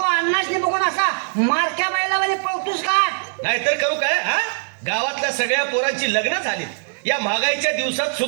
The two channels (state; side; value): silent; left; 65 dB below the other